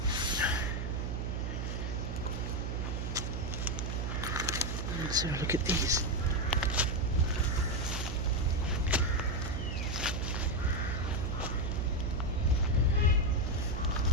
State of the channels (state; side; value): noise; right; hum, 2 dB below the sound